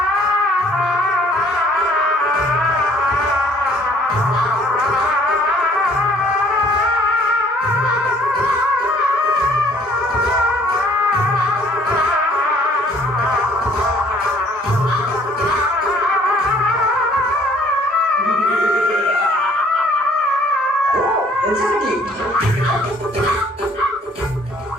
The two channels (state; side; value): normal; both; correlation 0.59